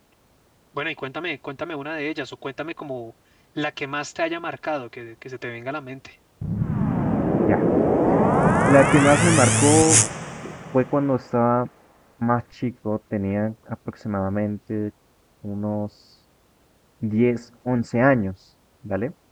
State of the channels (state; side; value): identical; both; correlation 1.00